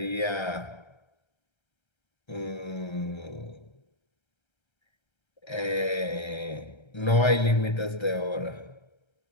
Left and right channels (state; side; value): late; right; 1.3 ms